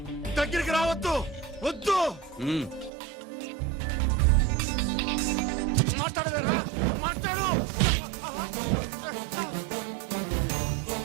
దగ్గరికి రావద్దు, వద్దు. మాట్లాడవేరా? మాట్లాడు.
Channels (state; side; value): drops out; left; at 2.9 s